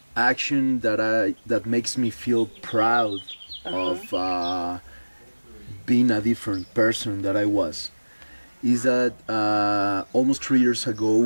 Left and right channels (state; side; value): inverted; both; correlation -1.00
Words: action that makes me feel proud of being a different person that I was, is that almost 3 years